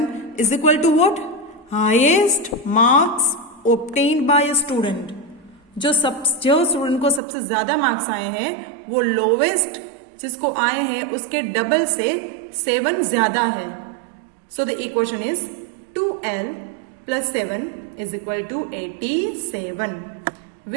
is equal to what? Highest marks obtained by a student. जो student को सबसे ज्यादा marks आए हैं वो lowest जिसको आए हैं उसके डबल से 7 ज्यादा है. So the equation is 2L plus 7 is equal to 87,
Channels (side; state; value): left; drops out; at 7.2 s